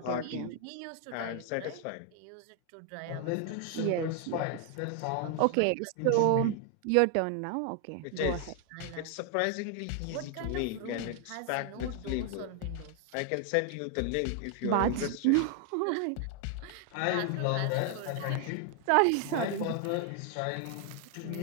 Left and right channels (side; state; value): both; different; correlation 0.00